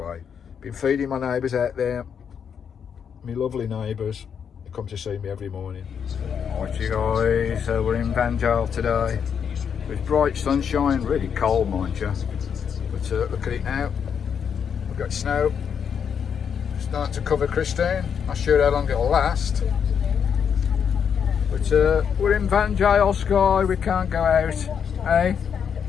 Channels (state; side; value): quieter; right; 7.4 dB